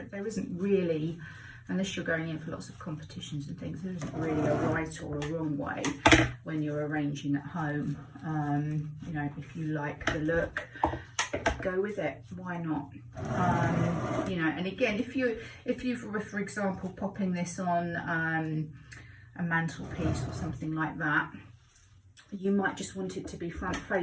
there isn't really, unless you're going in for lots of competitions and things, there isn't really a right or a wrong way when you're arranging at home. If you like the look, go with it, why not? And again, if you were, for example, popping this on a mantelpiece or something like that, you might just want it to be front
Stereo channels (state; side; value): identical; both; correlation 1.00